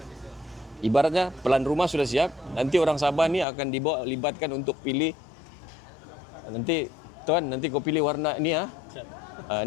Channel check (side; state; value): right; drops out; at 3.5 s